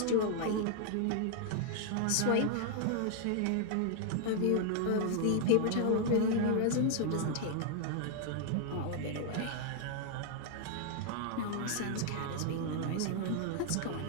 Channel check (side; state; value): both; different; correlation 0.00